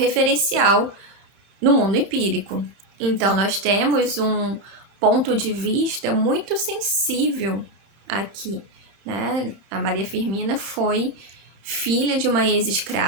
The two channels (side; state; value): left; late; 32 ms